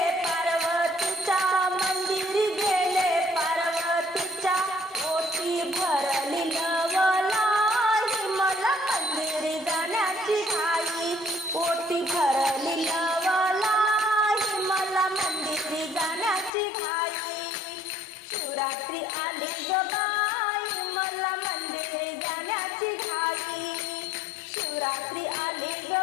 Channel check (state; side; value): drops out; right; at 16.5 s